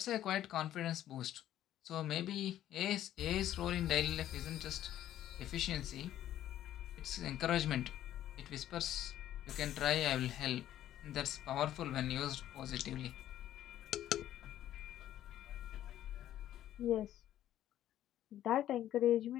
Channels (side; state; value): right; quieter; 12.3 dB